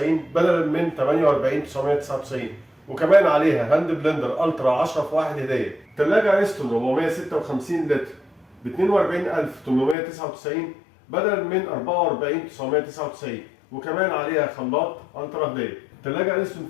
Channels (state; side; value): drops out; right; at 10.0 s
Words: بدلا من 48999، وكمان عليها هاند بلندر الترا 10 في 1 هديه. ثلاجه اريستون 456 لتر ب 42899 بدلا من 44999، وكمان عليها خلاط الترا هديه. ثلاجه اريستون